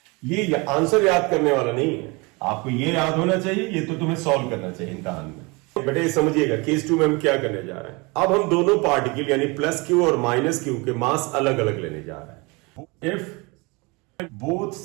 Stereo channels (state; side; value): quieter; left; 27.2 dB